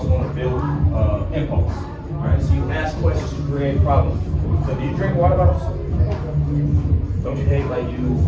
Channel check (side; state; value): both; identical; correlation 1.00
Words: going to build impulse. All right? So you ask questions to create problems. So do you drink water bottles? Don't you hate like you